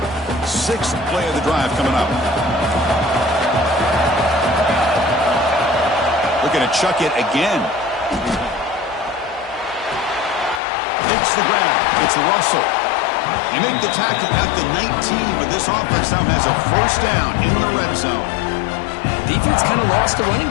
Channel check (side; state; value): right; drops out; at 10.6 s